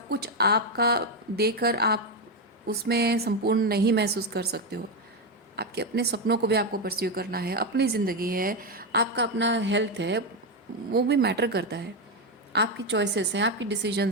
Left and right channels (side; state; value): both; normal; correlation 0.08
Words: कुछ आपका देकर आप उसमें संपूर्ण नहीं महसूस कर सकते हो। आपके अपने सपनों को भी आपको परस्यू करना है, अपनी ज़िंदगी है, आपका अपना हेल्थ है, वो भी मैटर करता है। आपकी चॉइसेस हैं, आपकी